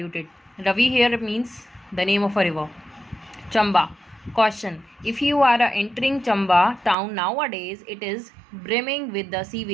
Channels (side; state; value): left; drops out; at 7.0 s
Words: Ravi here means the name of a river. Chamba. Caution. If you are entering Chamba town nowadays, it is brimming with the